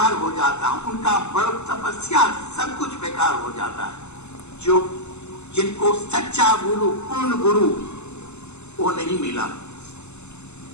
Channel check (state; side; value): late; right; 0.82 ms